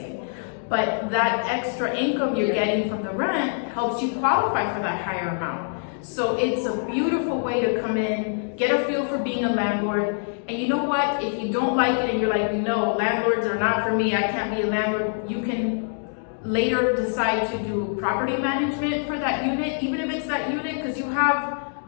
But that extra income you're getting from the rent helps you qualify for that higher amount. So it's a beautiful way to come in, get a feel for being a landlord. And you know what? If you don't like it and you're like, no, landlords are not for me, I can't be a landlord, you can later decide to do property management for that unit, even if it's that unit, because you have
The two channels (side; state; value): right; silent; digital silence